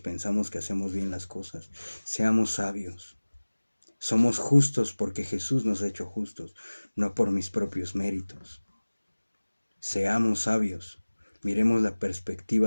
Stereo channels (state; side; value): inverted; both; correlation -1.00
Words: que hacemos bien las cosas. Seamos sabios. Somos justos porque Jesús nos ha hecho justos, no por mis propios méritos. Seamos sabios. Miremos la